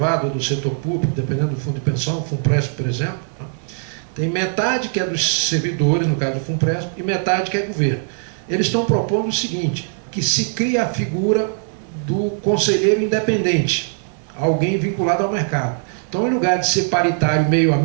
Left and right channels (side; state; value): left; silent; 58 dB below the other